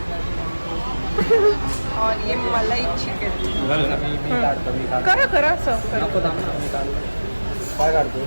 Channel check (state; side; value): inverted; both; correlation -1.00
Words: और ये मलाई चिकन. करा असं करा. काय काढतो